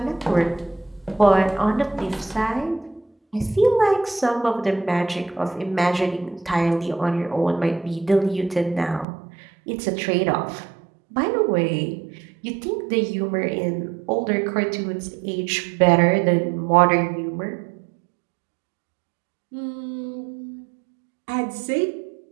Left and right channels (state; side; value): drops out; left; at 9.1 s